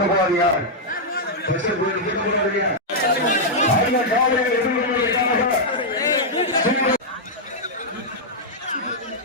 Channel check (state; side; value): normal; both; correlation -0.05